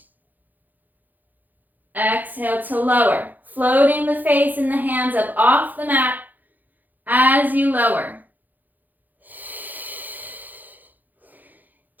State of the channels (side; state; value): left; late; 0.084 ms